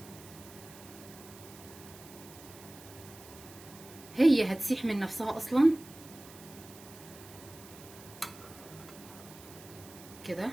هي هتسيح من نفسها اصلا كده.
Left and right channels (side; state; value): right; noise; hiss, 18 dB below the sound